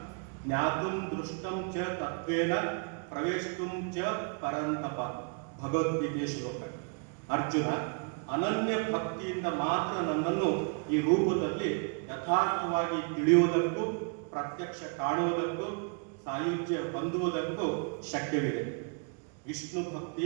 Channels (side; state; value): left; quieter; 39.5 dB